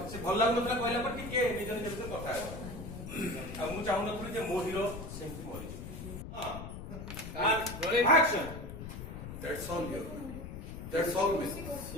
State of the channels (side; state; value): left; noise; rumble, 9 dB below the sound